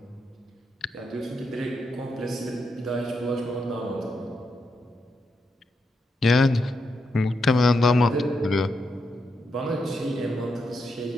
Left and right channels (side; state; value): both; normal; correlation 0.83